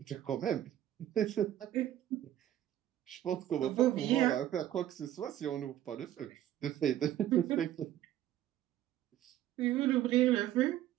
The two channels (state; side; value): quieter; left; 12.4 dB